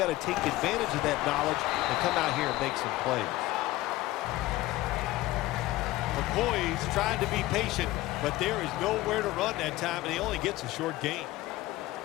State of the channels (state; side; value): quieter; right; 17.5 dB